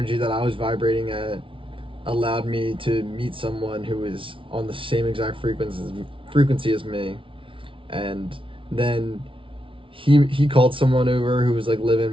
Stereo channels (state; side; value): late; left; 0.25 ms